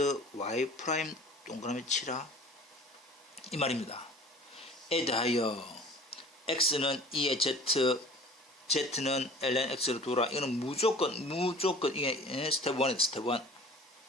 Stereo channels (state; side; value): normal; both; correlation 0.45